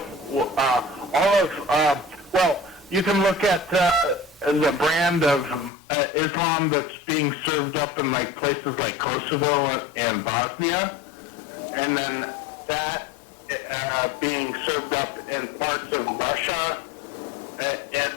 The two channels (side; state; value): right; drops out; at 5.7 s